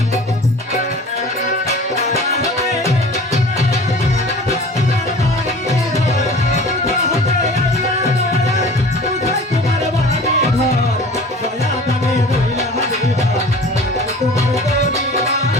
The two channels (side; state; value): both; normal; correlation 0.42